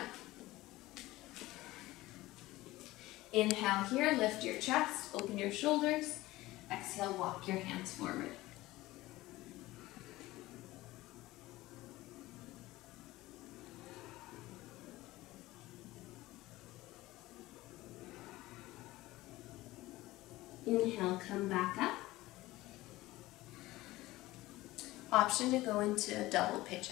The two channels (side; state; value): right; quieter; 18.1 dB